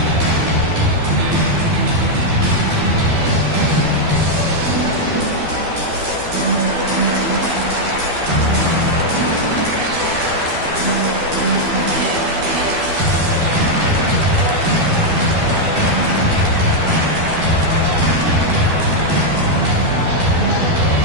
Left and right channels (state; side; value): late; left; 12 ms